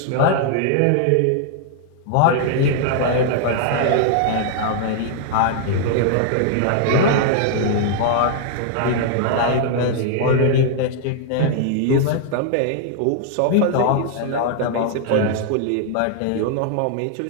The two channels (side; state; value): both; different; correlation 0.00